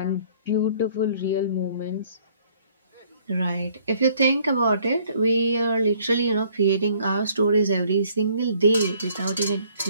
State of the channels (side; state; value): both; inverted; correlation -0.61